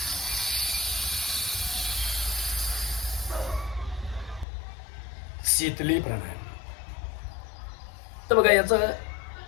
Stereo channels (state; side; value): drops out; right; at 4.5 s